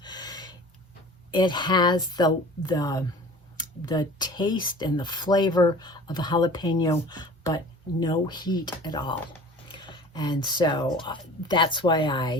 It has the taste and the flavor of a jalapeno, but no heat at all. And so that's why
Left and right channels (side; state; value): both; normal; correlation 0.42